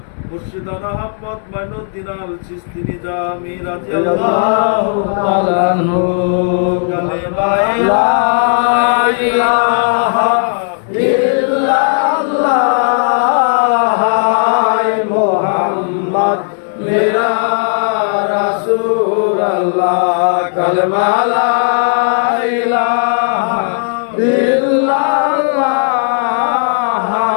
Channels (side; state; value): right; silent; digital silence